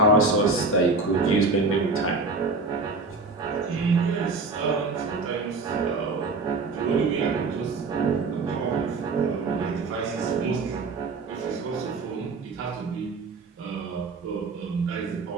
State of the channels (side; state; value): left; quieter; 3.7 dB